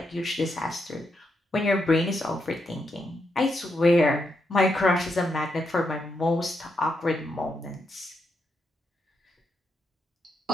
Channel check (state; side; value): normal; both; correlation 0.82